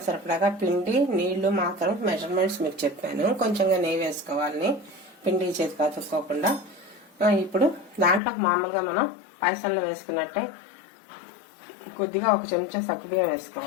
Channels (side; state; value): right; drops out; at 8.2 s